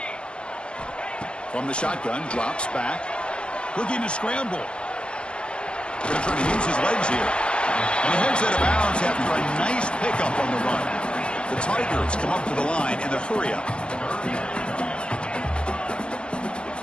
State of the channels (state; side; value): late; right; 0.055 ms